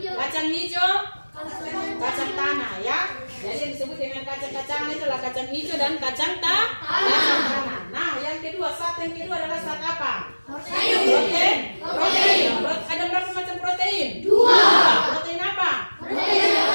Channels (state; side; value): inverted; both; correlation -1.00